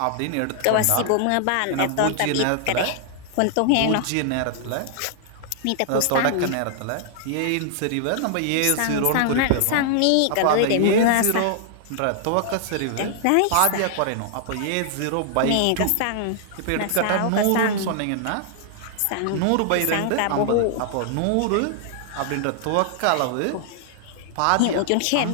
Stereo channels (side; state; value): both; different; correlation -0.01